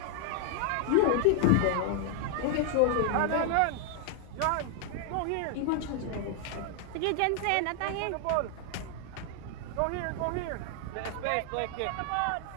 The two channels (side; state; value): both; different; correlation 0.00